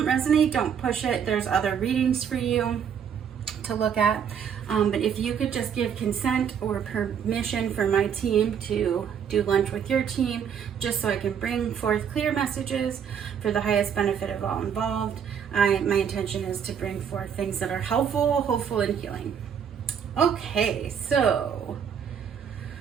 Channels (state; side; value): quieter; left; 7.8 dB